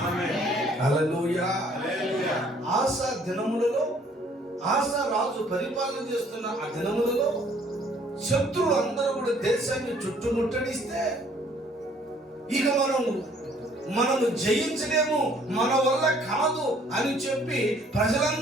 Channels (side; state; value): both; normal; correlation 0.60